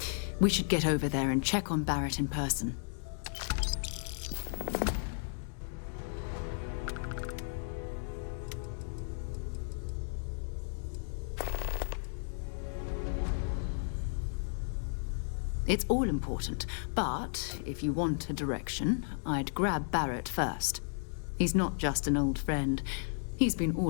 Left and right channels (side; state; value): right; silent; digital silence